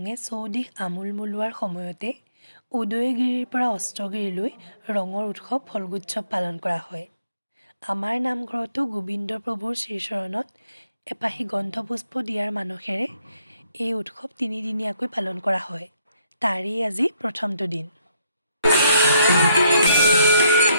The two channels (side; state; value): both; inverted; correlation -0.72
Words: চৌদিশ আমোল মোলোৱাৰ সময়তে উদয়গিৰিৰ পৰা অস্ত্ৰগিৰিলৈ ৰঙৰ উৎসৱ ফল্গোৎসৱ পালন কৰা হয়। আমাৰ নামঘৰতো গোবিন্দ প্ৰভুৰ শ্ৰীচৰণত এপাহি গন্ধপুষ্প দিয়াৰ মানসেৰে এই উৎসৱ তিনিদিনীয়াকৈ পালন কৰা হয়। তাৰেই আজি প্ৰথমটো দিন।